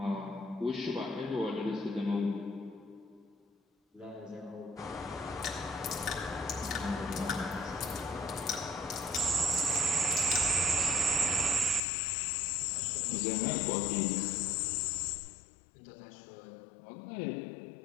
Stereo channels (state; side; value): drops out; right; at 11.8 s